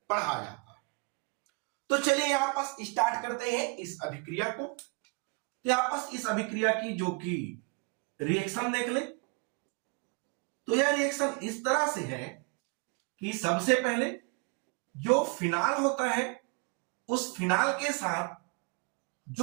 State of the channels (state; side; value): quieter; left; 30.6 dB